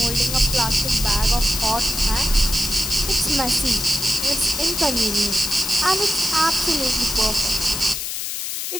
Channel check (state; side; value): noise; left; hiss, 4 dB below the sound